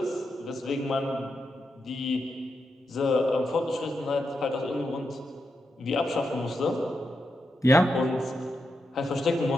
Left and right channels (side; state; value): both; normal; correlation 0.85